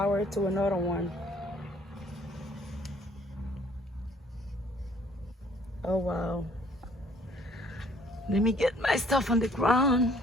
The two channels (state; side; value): normal; both; correlation 0.60